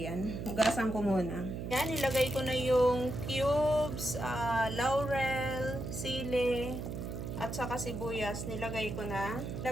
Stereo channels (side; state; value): right; noise; hum, 6 dB below the sound